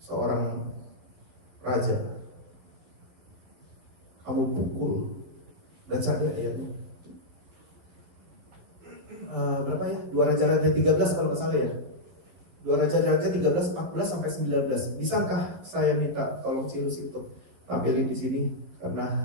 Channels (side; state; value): left; late; 11 ms